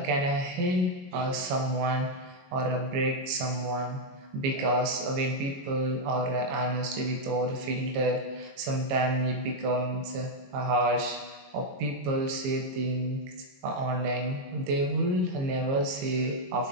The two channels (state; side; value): late; left; 22 ms